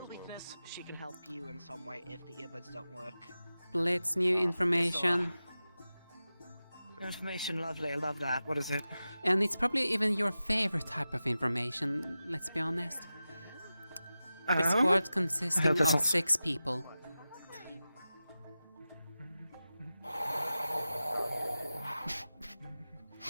weakness, she can help you in some way if the earbuds don't work. Blitz, new information. Information, lovely, I love that. What is it? And it's probably even your favorite type of information, let's be honest. The squad consisting of 6 people.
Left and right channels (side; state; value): both; inverted; correlation -0.94